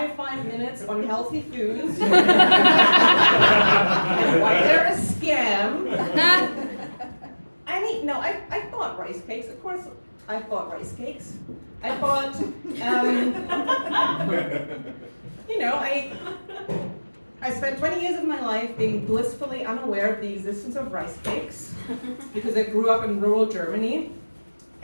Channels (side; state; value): both; inverted; correlation -1.00